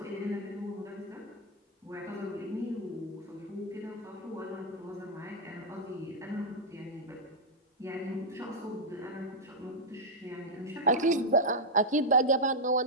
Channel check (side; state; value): both; normal; correlation -0.04